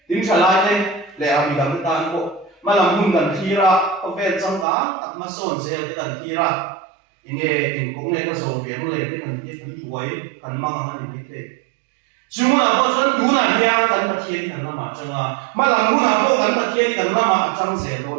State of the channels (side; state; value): left; drops out; at 4.7 s